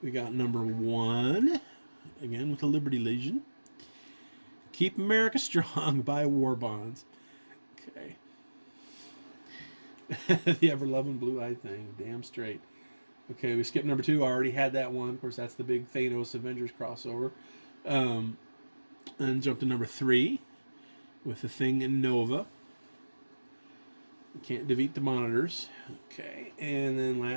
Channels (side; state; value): both; inverted; correlation -1.00